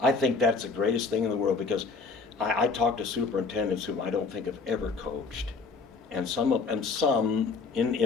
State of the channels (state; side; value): quieter; right; 4.5 dB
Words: think that's the greatest thing in the world, because I talk to superintendents whom I don't think have ever coached, and some